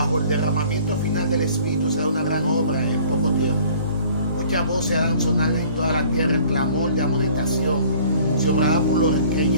el derramamiento final del Espíritu se da una gran obra en poco tiempo. Muchas voces harán sonar en toda la tierra el clamor de amonestación. Se obrarán por los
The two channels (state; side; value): inverted; both; correlation -0.52